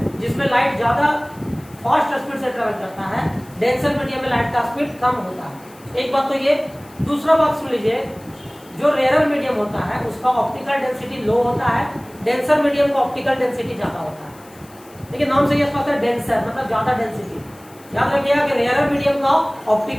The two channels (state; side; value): noise; left; hiss, 25 dB below the sound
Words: जिसमें लाइट ज्यादा फास्ट स्पीड से ट्रेवल करता है, डेंसर मीडियम में लाइट का स्पीड कम होता है। एक बात तो ये। दूसरा बात सुन लीजिए, जो रेयर मीडियम होता है उसका ऑप्टिकल डेंसिटी लो होता है, डेंसर मीडियम का ऑप्टिकल डेंसिटी ज्यादा होता है। देखिए, नाम से ये स्पष्ट है, डेंसर मतलब ज्यादा डेंसिटी। याद रखिएगा कि रेयर मीडियम का